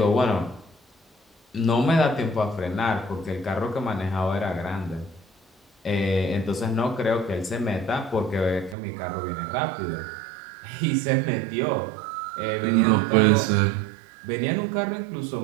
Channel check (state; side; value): drops out; left; at 8.8 s